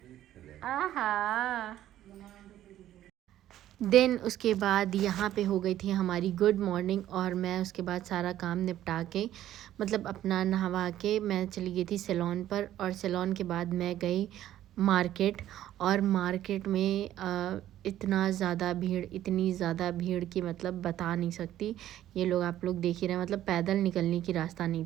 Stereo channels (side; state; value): left; quieter; 12.7 dB